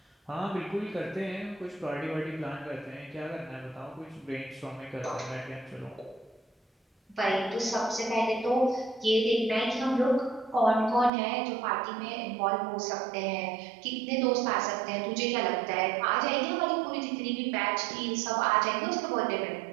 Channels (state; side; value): drops out; left; at 11.1 s